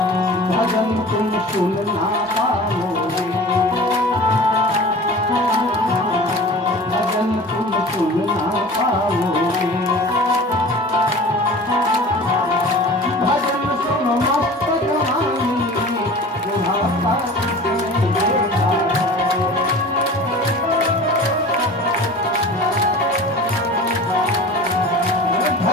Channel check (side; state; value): both; normal; correlation 0.39